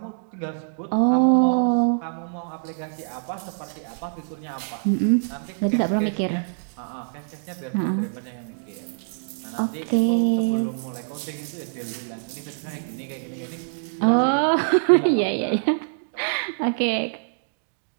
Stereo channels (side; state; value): left; silent; digital silence